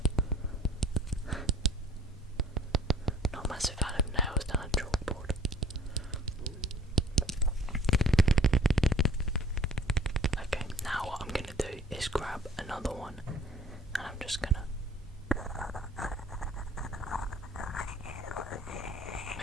Not a massive fan of nails down a chalkboard. Okay, now what I'm going to do is grab another one, and I'm just going to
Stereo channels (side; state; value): both; normal; correlation 0.51